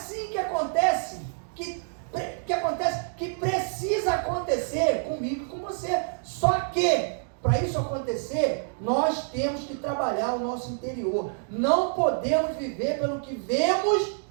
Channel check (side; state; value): left; silent; digital silence